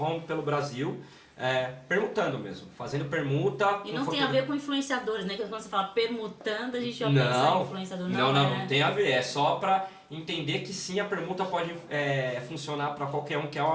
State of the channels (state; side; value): identical; both; correlation 1.00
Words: pelo Brasil, permutando mesmo, fazendo permuta. E não tem a ver com influenciadores, né? Quando você fala permutando, a gente já pensa em influenciador. Não tem a ver, é só para entender que sim, a permuta pode funcionar para qualquer um, que é